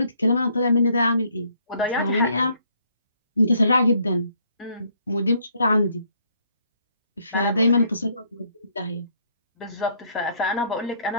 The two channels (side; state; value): both; inverted; correlation -0.66